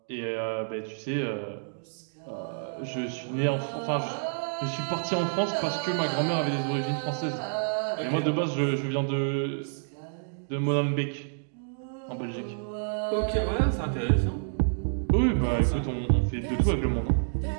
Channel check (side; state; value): left; silent; digital silence